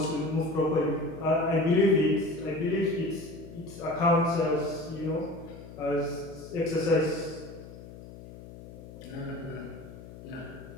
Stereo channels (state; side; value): noise; left; hum, 15 dB below the sound